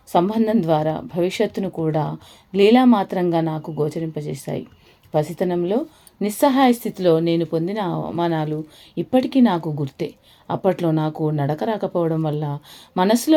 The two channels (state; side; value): identical; both; correlation 1.00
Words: సంబంధం ద్వారా భవిష్యత్తును కూడా లీలామాత్రంగా నాకు గోచరింపజేశాయి. పసితనంలో నిస్సహాయ స్థితిలో నేను పొందిన అవమానాలు ఇప్పటికీ నాకు గుర్తే. అప్పట్లో నాకు నడక రాకపోవడం వల్ల,